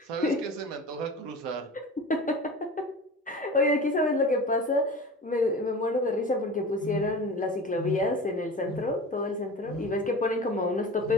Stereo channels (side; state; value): both; normal; correlation 0.34